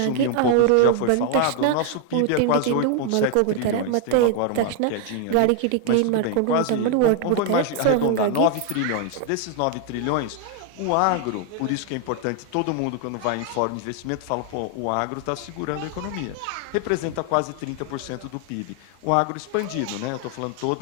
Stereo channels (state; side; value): different; both; correlation 0.00